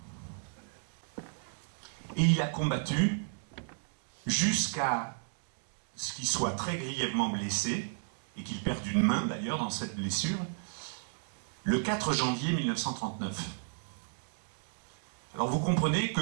Et il a combattu jusqu'à ce qu'il soit très grièvement blessé, et qu'il perde une main d'ailleurs dans cette blessure, le 4 janvier 1939. Alors vous comprenez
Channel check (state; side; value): silent; left; digital silence